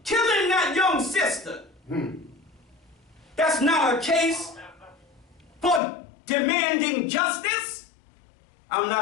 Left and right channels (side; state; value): right; drops out; at 5.8 s